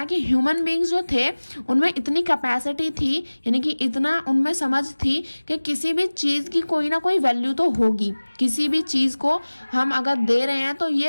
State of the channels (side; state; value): both; inverted; correlation -1.00